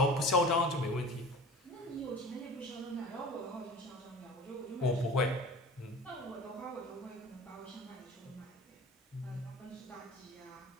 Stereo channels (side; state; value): both; normal; correlation 0.39